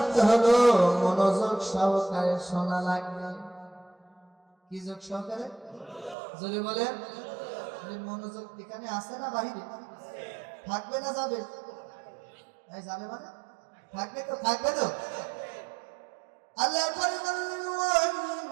হলো মনোযোগ সহকারে শোনা লাগবে। কি যোগ সহকারে? যদি বলেন মনোযোগ এখানে আছে না বাহিরে? থাকবে না যাবে? যাবে মানে থাকবে তো, থাকবে তো। আল্লাহ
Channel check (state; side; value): drops out; left; at 6.2 s